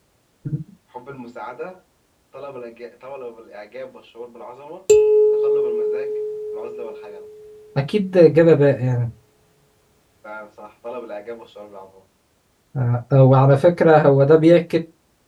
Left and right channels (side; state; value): both; identical; correlation 1.00